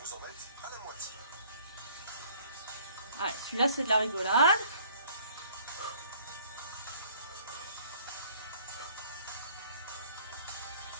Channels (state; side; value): inverted; both; correlation -0.56